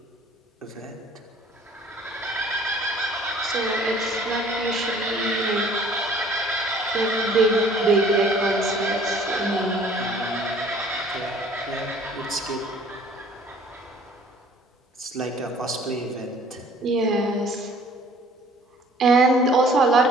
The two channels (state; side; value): normal; both; correlation 0.54